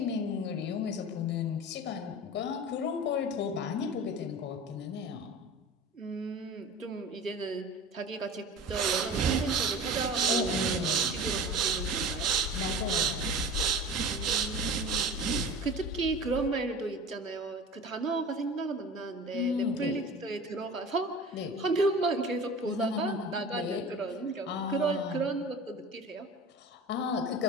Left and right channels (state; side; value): normal; both; correlation 0.37